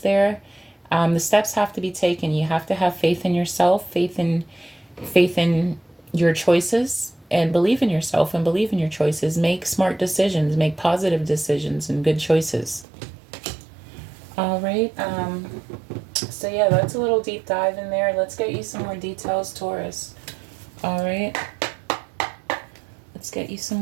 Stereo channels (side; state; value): left; drops out; at 12.9 s